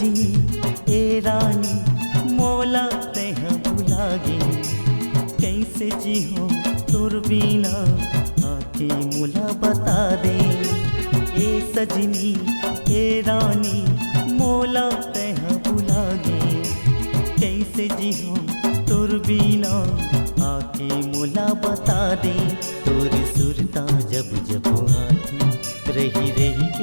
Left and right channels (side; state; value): both; inverted; correlation -1.00